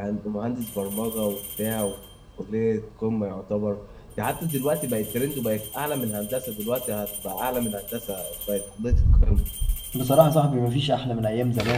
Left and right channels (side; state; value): both; identical; correlation 1.00